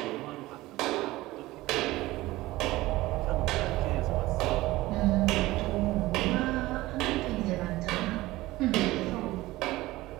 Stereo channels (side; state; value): left; quieter; 18.3 dB